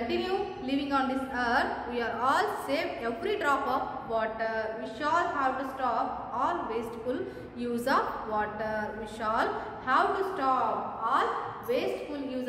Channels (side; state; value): both; identical; correlation 1.00